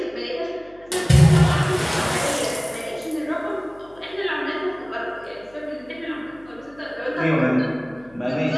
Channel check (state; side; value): noise; left; hum, 28 dB below the sound